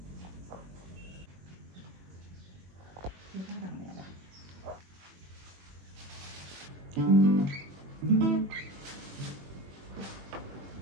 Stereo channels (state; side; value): late; left; 21 ms